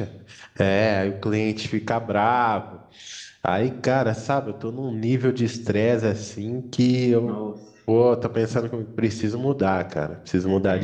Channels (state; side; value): identical; both; correlation 1.00